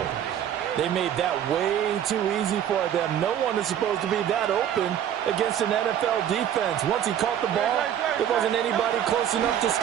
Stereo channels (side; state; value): left; quieter; 10.1 dB